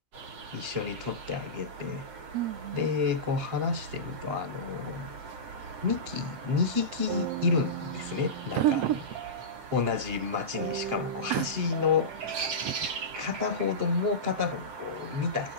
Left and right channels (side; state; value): left; late; 7.7 ms